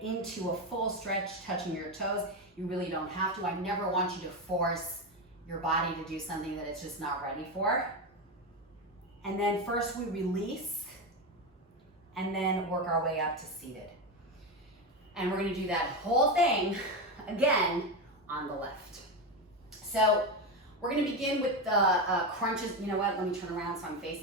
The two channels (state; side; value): normal; both; correlation 0.14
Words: into a full stretch, touching your toes. You really don't have to. I never want you to force your body to do something that it's just not ready for. And then first we release and then work our way up to seated. And we're gonna do that whole thing again on the left. So we're gonna begin with the crunches. You know what, let me turn around so I'm